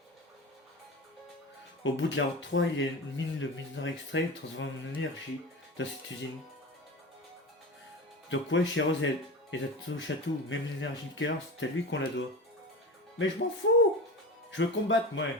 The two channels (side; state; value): both; normal; correlation 0.28